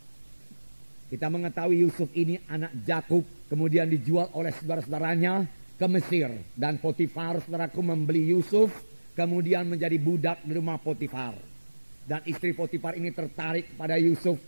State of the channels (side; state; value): both; inverted; correlation -1.00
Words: Kita mengetahui Yusuf ini anak Yakub, kemudian dijual oleh saudara-saudaranya ke Mesir. Dan Potifar, saudaraku, membeli Yusuf, kemudian menjadi budak di rumah Potifar. Dan istri Potifar ini tertarik pada Yusuf